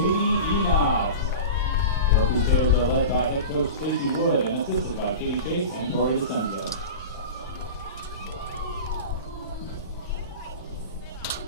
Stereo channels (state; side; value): inverted; both; correlation -0.30